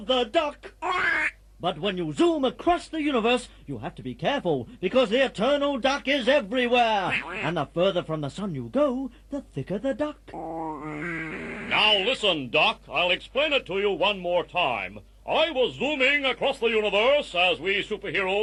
the duck. But when you zoom across the universe, you have to be careful because the eternal duck is everywhere. And the further from the sun you go, the thicker the duck. Now listen, Doc. I'll explain it to you one more time. I was zooming across the universe, as we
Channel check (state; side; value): identical; both; correlation 1.00